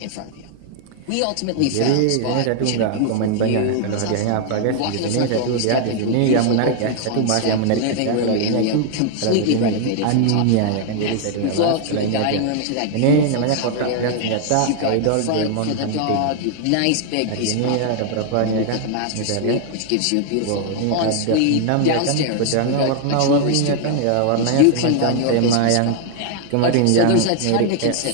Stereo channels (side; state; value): both; different; correlation 0.00